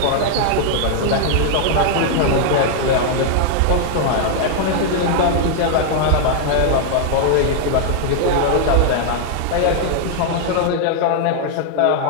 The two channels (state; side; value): different; both; correlation 0.00